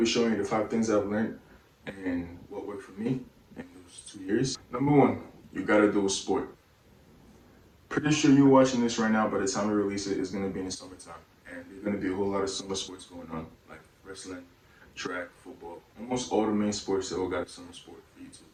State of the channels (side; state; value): both; identical; correlation 1.00